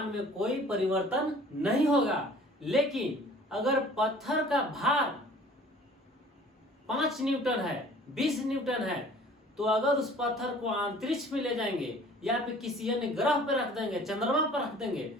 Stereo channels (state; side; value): normal; both; correlation 0.50